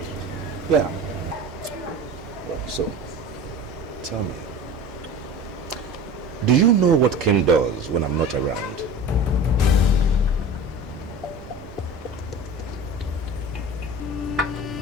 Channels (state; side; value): normal; both; correlation 0.36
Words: Yeah. Well, so, tell me, do you know what Kim does when I'm not around?